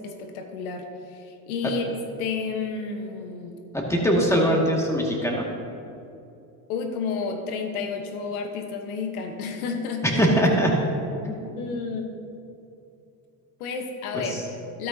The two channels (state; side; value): normal; both; correlation 0.29